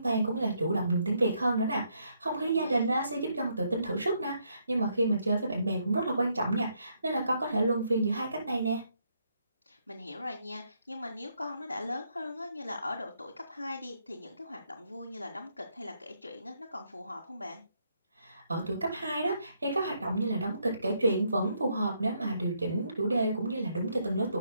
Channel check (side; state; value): both; inverted; correlation -0.75